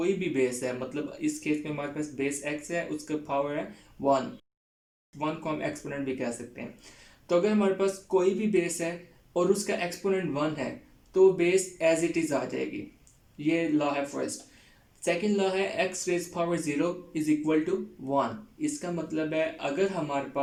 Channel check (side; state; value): both; identical; correlation 1.00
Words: भी बेस है, मतलब इस केस में हमारे पास बेस एक्स है, उसका पावर है 1 को हम एक्सपोनेंट भी कह सकते हैं। तो अगर हमारे पास कोई भी बेस है और उसका एक्सपोनेंट 1 है तो बेस एज इट इज़ आ जाएगी। ये लॉ है फर्स्ट। सेकेंड लॉ है x raise power 0 is equal to 1। इसका मतलब है अगर हमारे